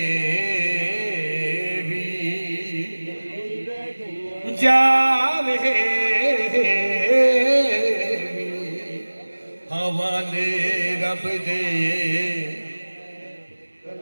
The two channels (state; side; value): inverted; both; correlation -1.00